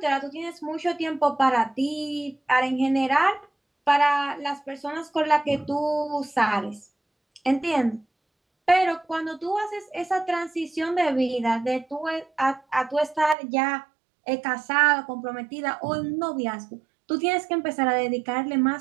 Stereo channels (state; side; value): drops out; left; at 13.4 s